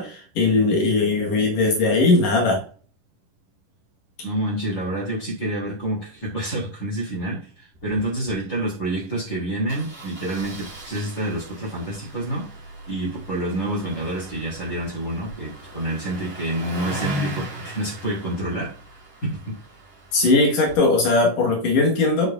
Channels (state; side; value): late; right; 10 ms